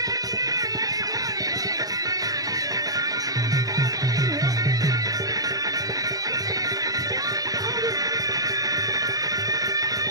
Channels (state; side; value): late; left; 0.18 ms